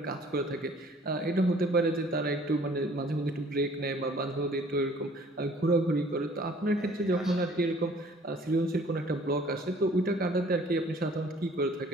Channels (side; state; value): both; normal; correlation 0.55